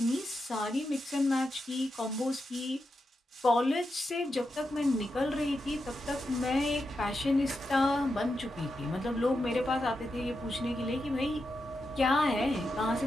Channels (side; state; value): both; normal; correlation 0.87